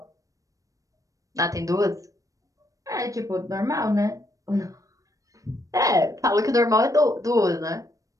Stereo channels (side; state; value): left; late; 0.16 ms